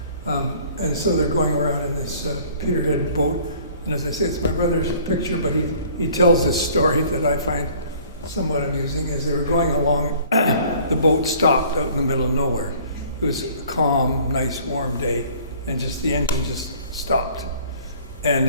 And so they're going around in this Peterhead boat. And as I say, it's my brother's picture, but he tells this story that I find somewhat amusing. As they were going along, the boat stopped out in the middle of nowhere. It was a calm, nice, warm day, and just the engine just stopped. And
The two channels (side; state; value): both; inverted; correlation -0.53